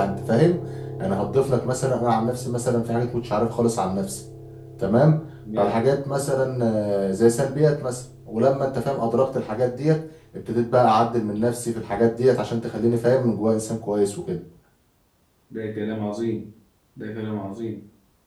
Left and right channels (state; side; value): identical; both; correlation 1.00